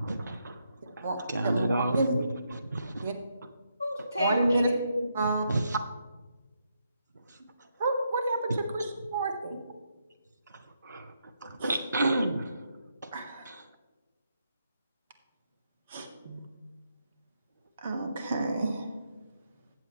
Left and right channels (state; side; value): inverted; both; correlation -0.79